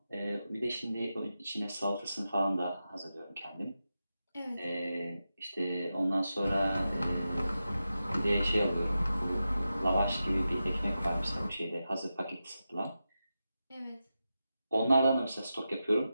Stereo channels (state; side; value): inverted; both; correlation -0.91